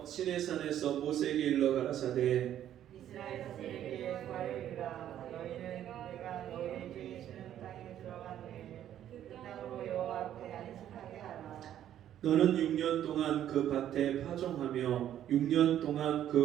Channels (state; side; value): quieter; left; 11.2 dB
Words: 시내산에서 모세에게 일러 가라사대 이스라엘 자손에게 말하리라. 너희는 내가 너희에게 주는 땅에 들어간 후에 그 땅으로 여호와 앞에 안식하게 하라. 너는 6년 동안 그 밭에 파종하며 6년 동안